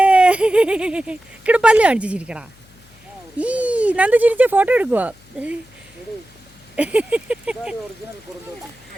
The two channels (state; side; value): noise; left; hum, 28 dB below the sound